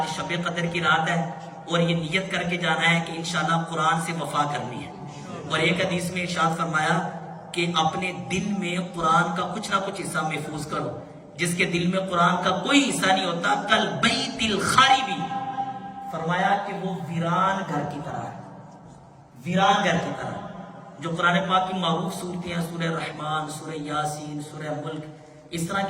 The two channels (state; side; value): identical; both; correlation 1.00